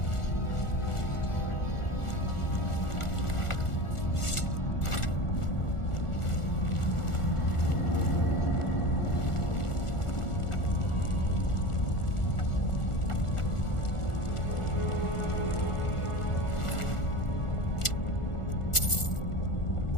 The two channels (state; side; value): late; right; 1.4 ms